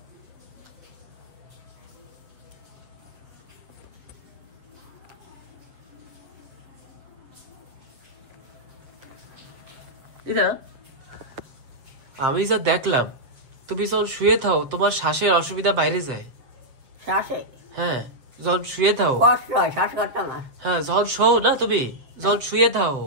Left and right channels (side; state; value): left; late; 7.6 ms